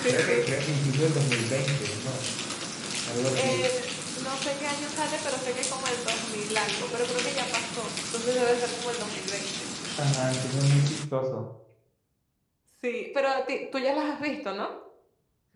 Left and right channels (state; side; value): identical; both; correlation 1.00